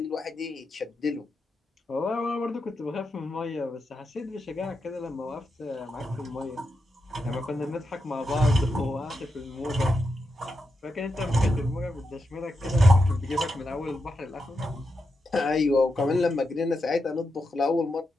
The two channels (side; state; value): both; normal; correlation 0.86